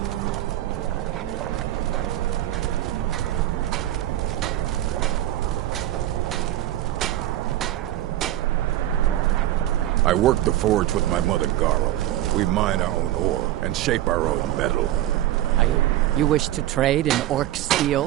I work the forge with my mother, Garl. We mine our own ore and shape our own metal. You wish to trade in orc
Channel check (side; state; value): left; quieter; 13.7 dB